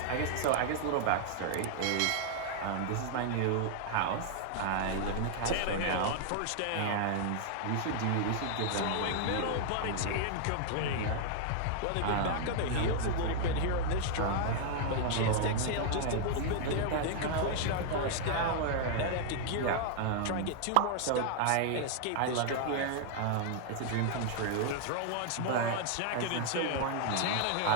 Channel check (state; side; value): different; both; correlation 0.00